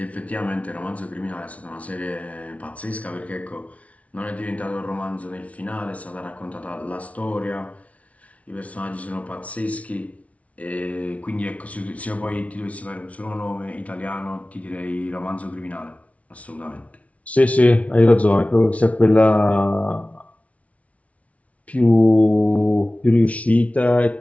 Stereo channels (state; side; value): late; right; 0.066 ms